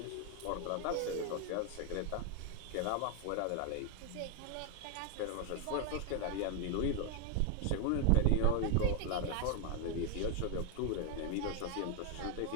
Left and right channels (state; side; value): different; both; correlation 0.01